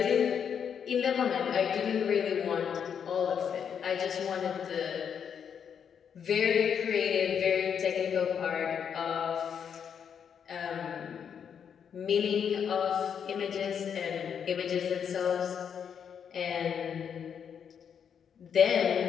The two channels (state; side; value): quieter; right; 7.6 dB